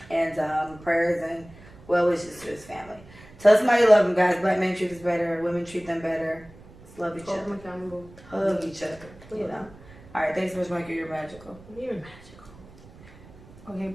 And prayers and well wishes to his family. Tell somebody you love them, guys. Black men treat us better. Women treat them better. Just love each other. Hug each other. You know. All right. Thanks so much, Michael. You're magical. You're magical. Okay,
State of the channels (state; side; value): noise; right; rumble, 21 dB below the sound